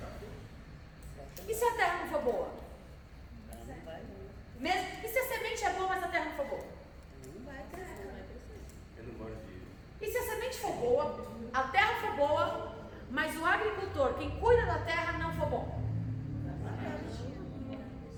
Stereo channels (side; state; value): both; identical; correlation 1.00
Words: E se a terra não for boa? não vai. E se a semente é boa, mas a terra não for boa? Não vai crescer, não vai crescer. Eu não gosto de... E se a semente for boa, a terra for boa, mas o agricultor, quem cuida da terra, não for bom?